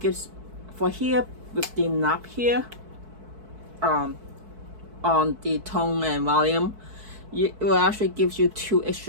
for here with the knob here on the tone and volume, it will actually gives you 2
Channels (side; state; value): left; late; 4.6 ms